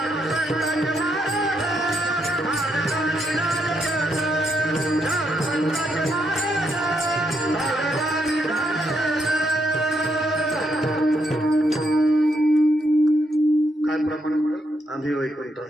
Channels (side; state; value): both; normal; correlation 0.78